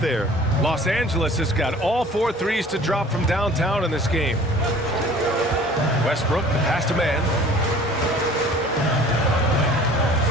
Los Angeles has got all 4 threes to drop from downtown in this game. Westbrook, the pass to Mann.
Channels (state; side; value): normal; both; correlation 0.48